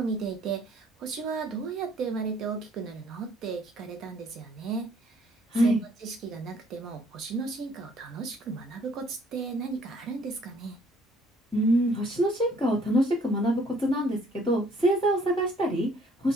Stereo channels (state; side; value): normal; both; correlation 0.61